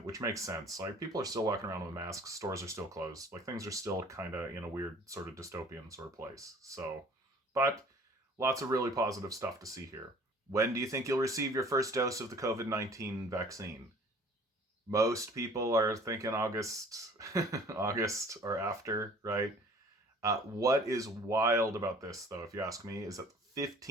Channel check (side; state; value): both; normal; correlation 0.51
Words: which makes sense. Like, people are still walking around with masks, stores are still closed. Like, things are still kind of in a weird sort of dystopian sort of place. So, but lots of really positive stuff to see here. When do you think you'll receive your first dose of the COVID-19 vaccine? Most people are thinking August, August or after, right? What is wild about this, though, if you ask me, is that